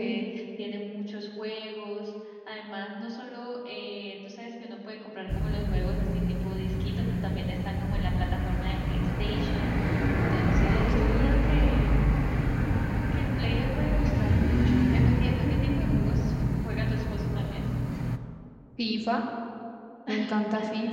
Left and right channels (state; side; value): identical; both; correlation 1.00